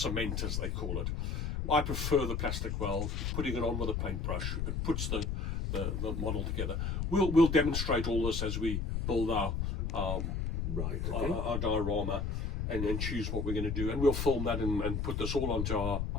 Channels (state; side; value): noise; left; rumble, 1 dB below the sound